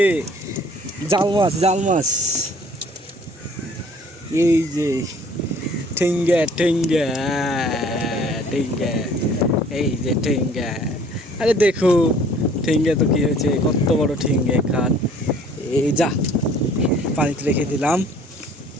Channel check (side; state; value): both; normal; correlation 0.54